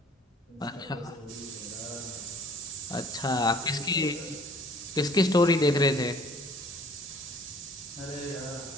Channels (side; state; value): both; normal; correlation 0.55